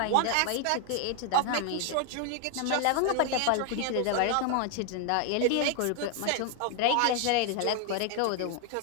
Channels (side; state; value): both; different; correlation 0.00